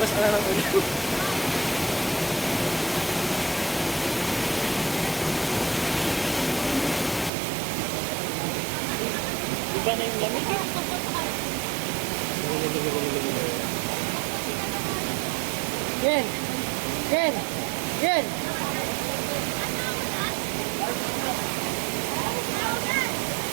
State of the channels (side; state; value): left; drops out; at 7.3 s